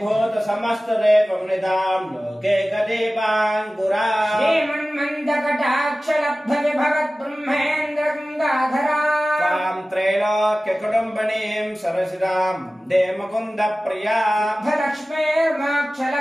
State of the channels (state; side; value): normal; both; correlation 0.96